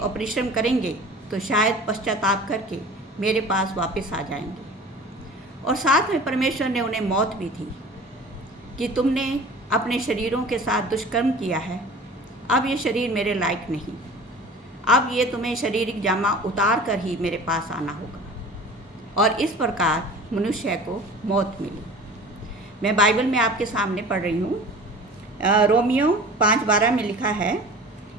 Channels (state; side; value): normal; both; correlation 0.41